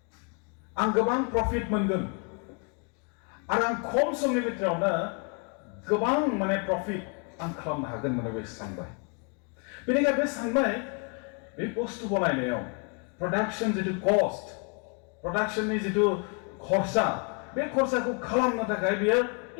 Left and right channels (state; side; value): quieter; right; 35.4 dB